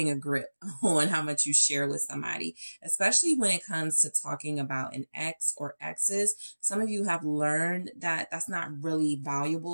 a grip on how much you share with somebody, especially when it comes to talking about an ex or exes. Some of you have learned that that's not really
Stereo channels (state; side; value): inverted; both; correlation -1.00